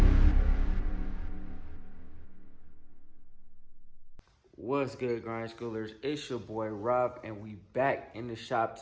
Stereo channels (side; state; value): both; identical; correlation 1.00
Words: What's good, grind schoolers? It's your boy Rob, and we back in the shop